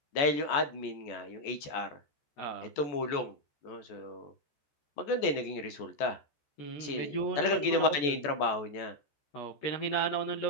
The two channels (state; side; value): late; right; 14 ms